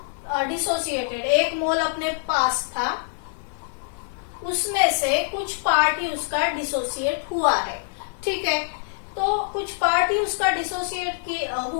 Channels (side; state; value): right; silent; 62 dB below the other